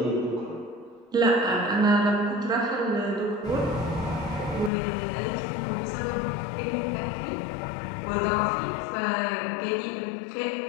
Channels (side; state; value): right; drops out; at 4.7 s